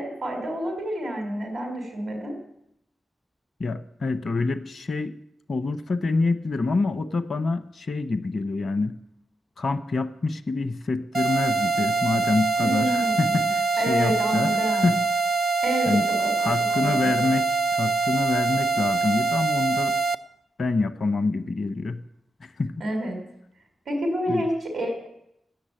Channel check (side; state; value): both; normal; correlation 0.83